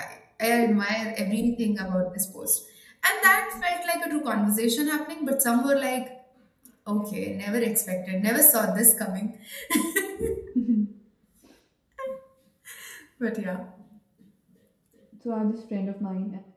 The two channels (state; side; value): identical; both; correlation 1.00